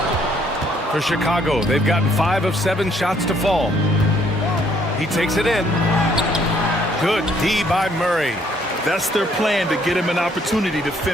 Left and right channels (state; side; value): normal; both; correlation 0.66